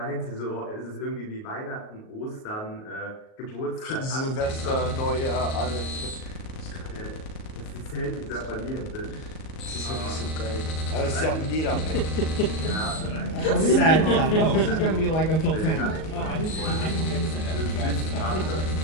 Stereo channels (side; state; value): right; late; 38 ms